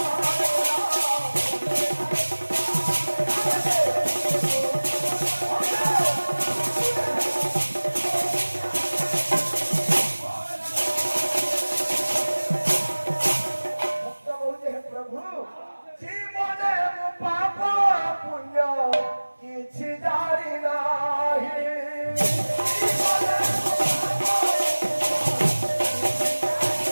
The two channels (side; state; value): both; inverted; correlation -1.00